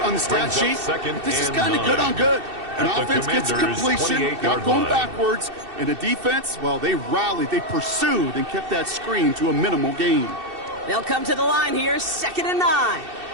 on the stat sheet, but this is kind of good on good. An offense gets a completion, not going backwards, and a defense, well, they rallied, they pursued, and kept that screen to a minimal gain. They'll come to the line here, 2nd and 9.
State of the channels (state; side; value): late; left; 2.7 ms